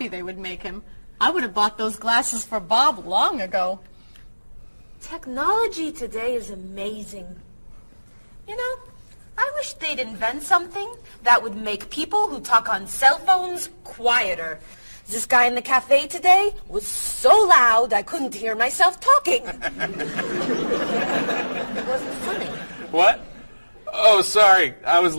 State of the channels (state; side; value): inverted; both; correlation -1.00